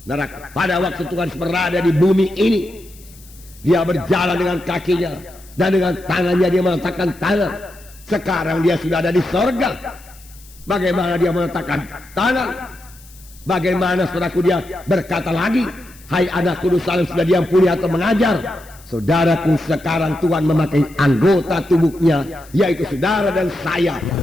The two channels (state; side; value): noise; left; hiss, 24 dB below the sound